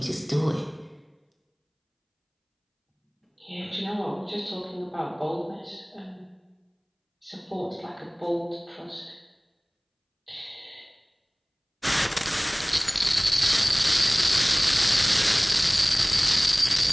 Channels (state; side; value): identical; both; correlation 1.00